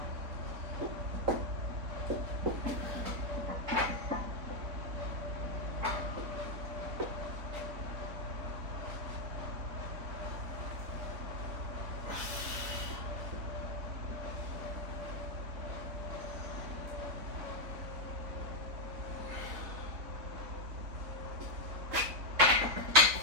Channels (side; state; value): left; late; 3.9 ms